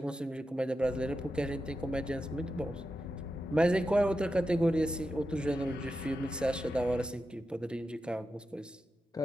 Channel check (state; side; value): normal; both; correlation 0.89